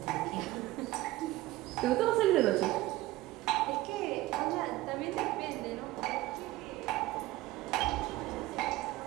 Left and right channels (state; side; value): quieter; left; 17.5 dB